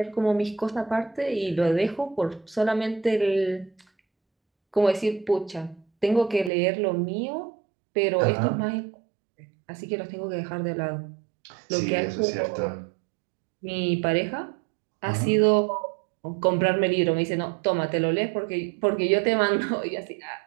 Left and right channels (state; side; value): drops out; left; at 6.5 s